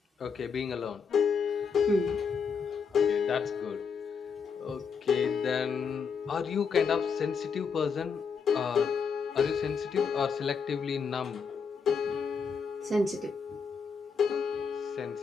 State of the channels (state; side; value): quieter; right; 5.9 dB